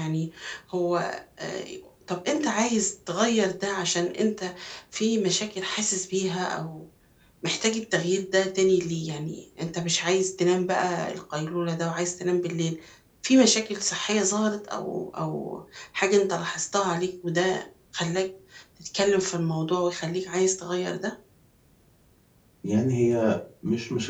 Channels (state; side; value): identical; both; correlation 1.00